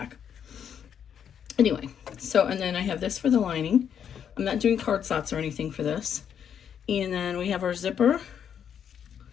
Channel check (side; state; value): right; quieter; 8.4 dB